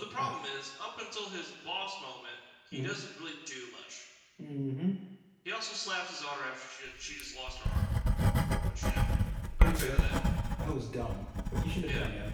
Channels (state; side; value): identical; both; correlation 1.00